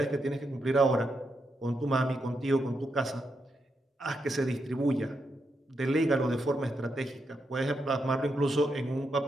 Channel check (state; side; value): normal; both; correlation 0.83